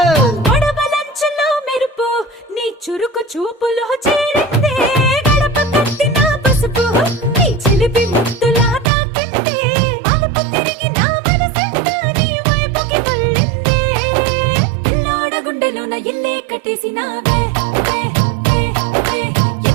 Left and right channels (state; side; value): drops out; left; at 8.9 s